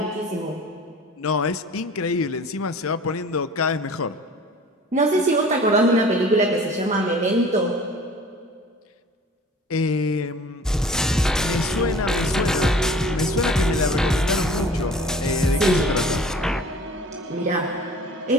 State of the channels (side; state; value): both; normal; correlation 0.45